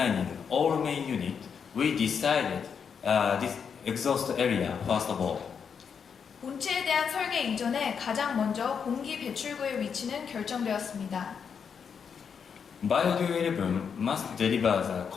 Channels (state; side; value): quieter; right; 6.7 dB